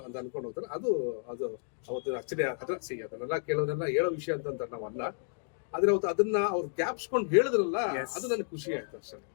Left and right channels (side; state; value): right; silent; digital silence